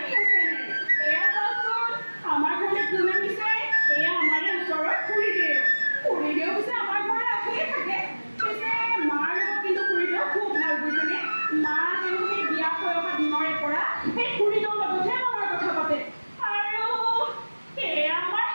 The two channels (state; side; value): inverted; both; correlation -1.00